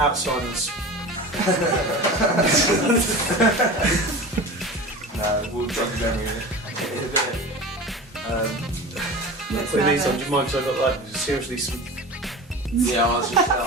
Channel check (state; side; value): normal; both; correlation 0.33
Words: Alzheimer's. No, we'll drug memory in a bit. Putting these on, do you mind? Because I've got like seriously some Yeah, I was